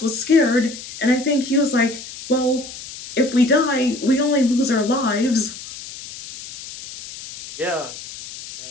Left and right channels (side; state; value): left; noise; hiss, 13 dB below the sound